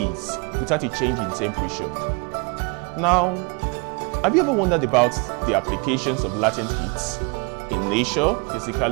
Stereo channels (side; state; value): left; quieter; 31.7 dB